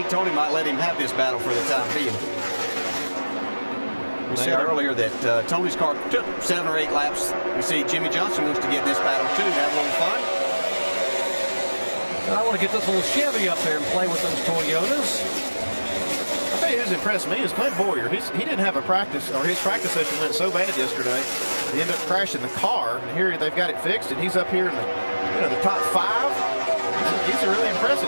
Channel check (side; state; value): both; inverted; correlation -1.00